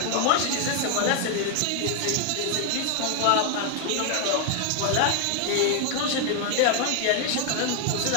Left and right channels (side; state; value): both; different; correlation 0.00